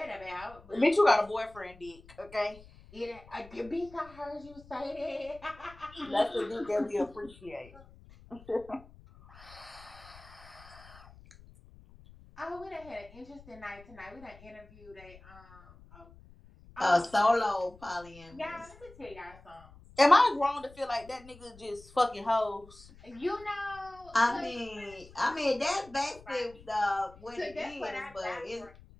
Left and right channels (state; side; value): noise; left; rumble, 22 dB below the sound